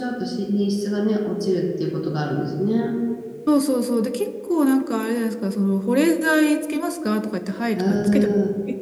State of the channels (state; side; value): identical; both; correlation 1.00